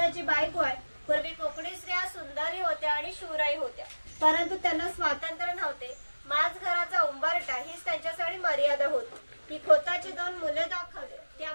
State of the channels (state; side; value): inverted; both; correlation -1.00